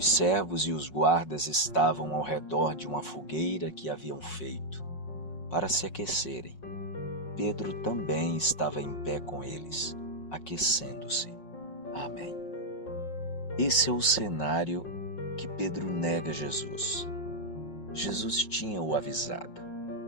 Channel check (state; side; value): late; right; 5.5 ms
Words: servos e os guardas estavam ao redor de uma fogueira que haviam feito para se aquecerem. Pedro também estava em pé com eles, aquecendo-se. Amém. Esse é o cenário que Pedro nega Jesus. Jesus tinha o avisado